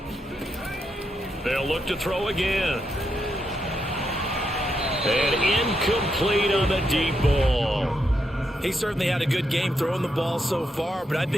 They'll look to throw again. And incomplete on the deep ball. He certainly had a good game throwing the ball so far, but I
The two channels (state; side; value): normal; both; correlation 0.82